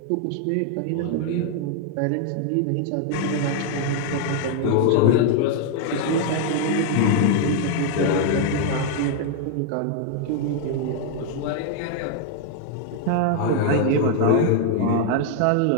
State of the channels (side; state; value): both; different; correlation 0.00